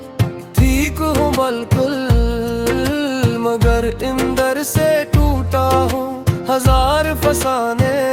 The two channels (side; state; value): both; identical; correlation 1.00